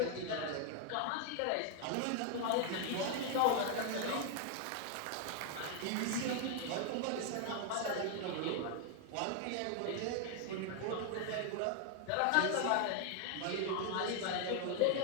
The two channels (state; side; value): different; both; correlation 0.00